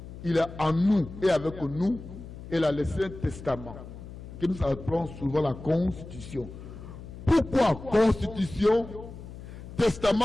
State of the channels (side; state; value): left; noise; hum, 13 dB below the sound